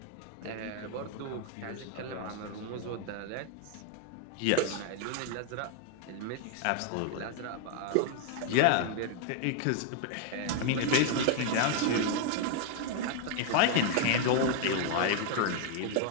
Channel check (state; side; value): different; both; correlation 0.00